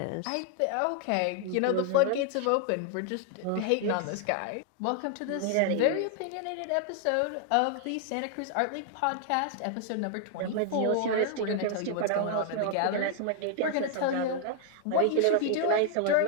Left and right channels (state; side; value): different; both; correlation 0.00